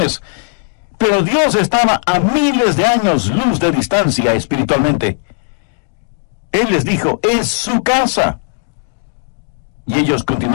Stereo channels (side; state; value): right; silent; digital silence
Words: Pero Dios estaba a miles de años luz de distancia espiritualmente. Él les dijo: «es su casa». Y ellos